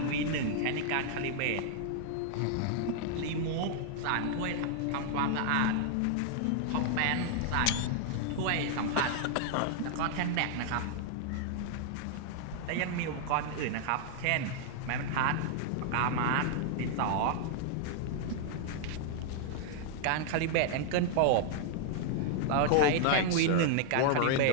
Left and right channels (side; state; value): both; different; correlation -0.01